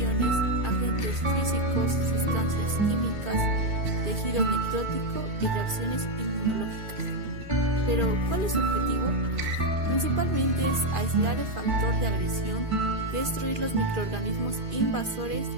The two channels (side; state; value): left; late; 2.3 ms